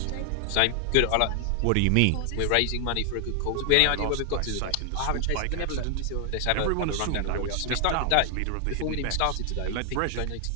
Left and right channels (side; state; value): both; different; correlation 0.00